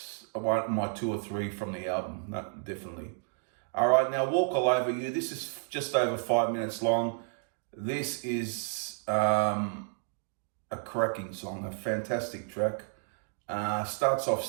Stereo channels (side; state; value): left; silent; 57 dB below the other